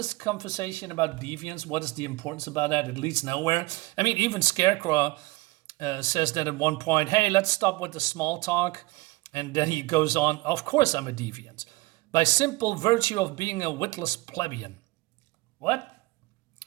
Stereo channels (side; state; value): left; quieter; 22.2 dB